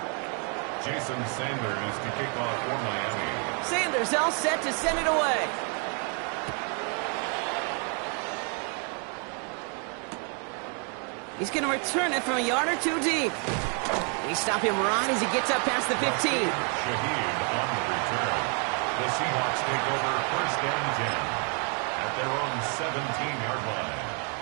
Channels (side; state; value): left; quieter; 39.2 dB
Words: Jason Sanders to kick off for Miami. Sanders all set to send it away. He's going to return it from a yard or 2 deep. They stop him right as he gets up past the 15. Shaheed on the return. The Seahawks take over 1st and 10 at their own 17-yard line.